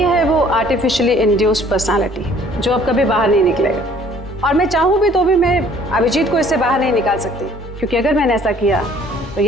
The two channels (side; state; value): both; normal; correlation 0.56